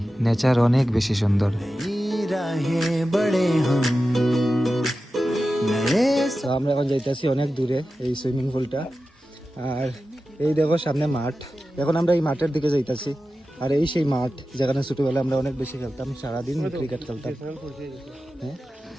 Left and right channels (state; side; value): normal; both; correlation 0.93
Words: নেচার অনেক বেশি সুন্দর। তো আমরা এখন যাইতেছি অনেক দূরে এই সুইমিং পুলটা, আর এই দেখো সামনে মাঠ। এখন আমরা এই মাঠের দিকে যাইতেছি, আর এই সেই মাঠ যেখানে ছোটবেলায় আমরা অনেক বেশি খেলতাম, সারাদিন ক্রিকেট খেলতাম। হ্যাঁ,